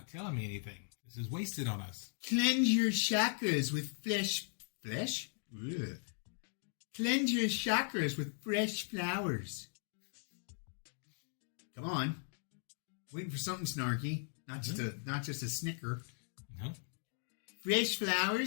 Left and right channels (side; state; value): right; silent; 52 dB below the other